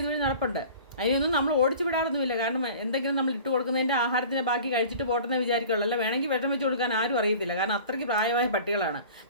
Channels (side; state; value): both; inverted; correlation -0.43